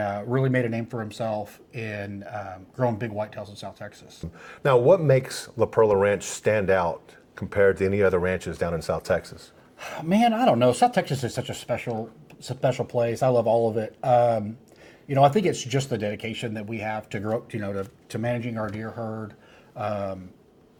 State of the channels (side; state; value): both; identical; correlation 1.00